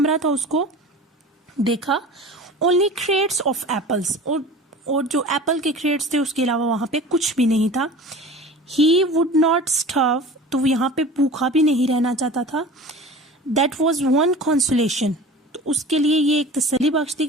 था, उसको देखा। Only crates of apples, और जो एप्पल के क्रेट्स थे उसके अलावा वहां पे कुछ भी नहीं था। He would not starve, तो वो यहाँ पे भूखा भी नहीं रहना चाहता था। That was one consolation, तो उसके लिए ये एक तसल्ली बख्श थी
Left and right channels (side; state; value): both; normal; correlation 0.38